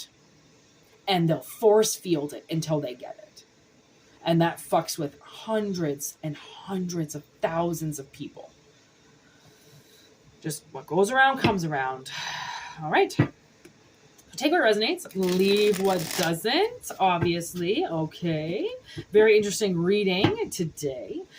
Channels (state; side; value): identical; both; correlation 1.00